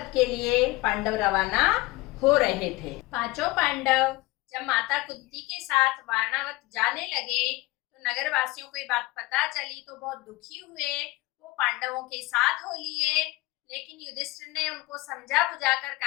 के लिए पांडव रवाना हो रहे थे। पांचों पांडव जब माता कुंती के साथ वारणावत जाने लगे तो नगरवासियों को ये बात पता चली तो बहुत दुखी हुए। वो पांडवों के साथ हो लिए, लेकिन युधिष्ठिर ने उनको समझा बुझाकर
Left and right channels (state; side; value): quieter; right; 21.3 dB